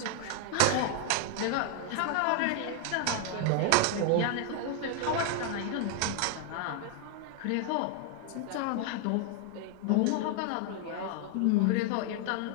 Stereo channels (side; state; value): both; different; correlation 0.00